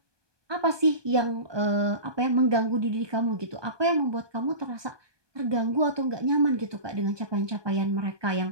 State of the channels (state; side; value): late; left; 1.2 ms